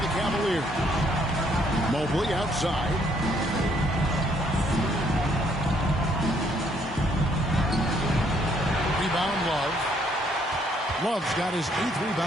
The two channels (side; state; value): both; normal; correlation 0.68